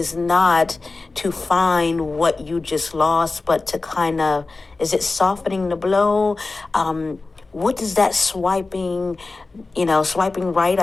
not to find what you just lost, but to kind of, is it softening the blow? What does that swiping right,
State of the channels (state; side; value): quieter; right; 3.6 dB